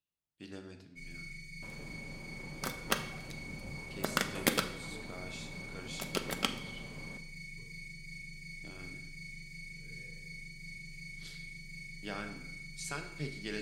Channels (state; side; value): identical; both; correlation 1.00